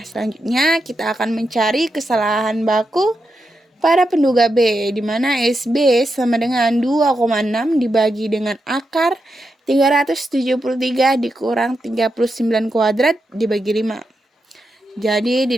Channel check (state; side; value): normal; both; correlation 0.86